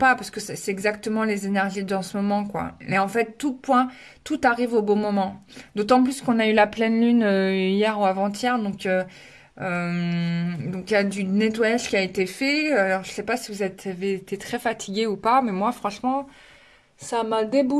parce que c'est exactement les énergies de ce moment, quoi. Et en fait, tout arrive au bon moment. D'autant plus qu'on a eu la pleine lune hier ou avant-hier, donc il y a du nettoyage qui a été fait. Alors je sais pas si vous avez été très fatigué ou pas, mais moi franchement, ça m'a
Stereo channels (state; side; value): identical; both; correlation 1.00